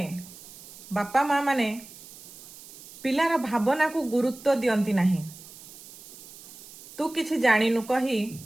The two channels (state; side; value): noise; right; hiss, 18 dB below the sound